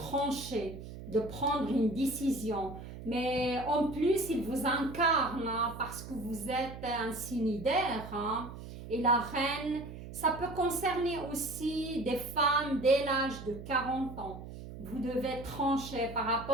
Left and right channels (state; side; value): noise; right; hum, 12 dB below the sound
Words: de prendre une décision. Mais en plus, il vous incarne hein, parce que vous êtes un signe d'air. Hein, et la reine, ça peut concerner aussi des femmes dès l'âge de 40 ans. Vous devez trancher par